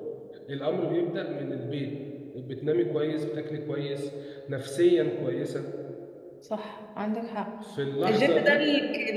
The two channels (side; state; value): both; identical; correlation 1.00